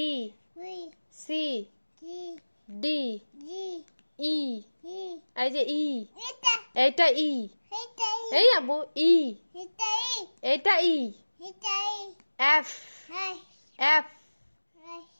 C D E এই যে ই এটা ই এই আবু ই এটা ই এফ এফ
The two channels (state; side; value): inverted; both; correlation -1.00